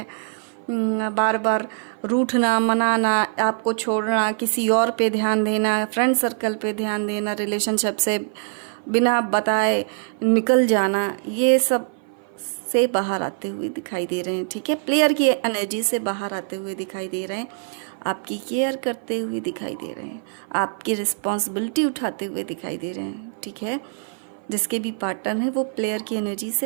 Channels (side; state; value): left; silent; 56 dB below the other